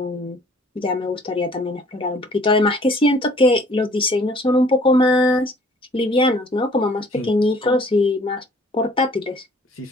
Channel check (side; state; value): both; normal; correlation 0.55